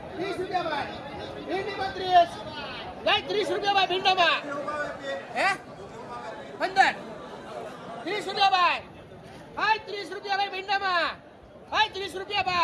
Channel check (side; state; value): both; identical; correlation 1.00